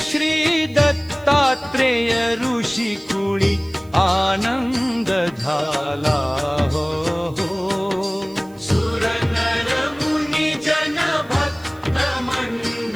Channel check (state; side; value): noise; right; hiss, 28 dB below the sound